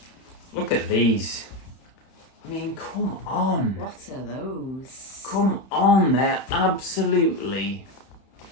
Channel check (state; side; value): late; right; 31 ms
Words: Look at these. I mean, come on. What are those? Come on, they're absolutely